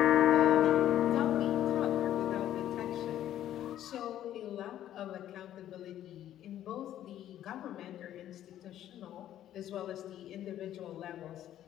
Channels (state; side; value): quieter; right; 11.9 dB